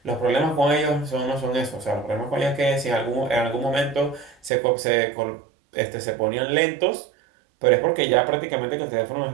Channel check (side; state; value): left; drops out; at 4.5 s